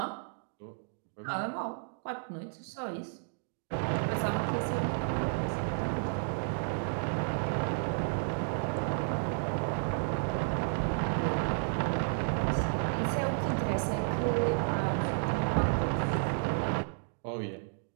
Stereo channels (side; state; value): left; silent; digital silence